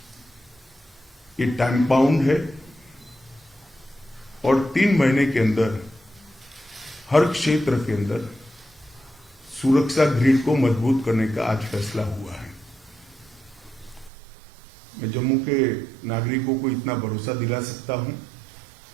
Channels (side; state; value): left; drops out; at 14.1 s